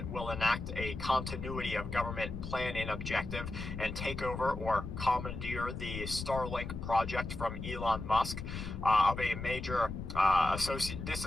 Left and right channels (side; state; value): left; noise; rumble, 7 dB below the sound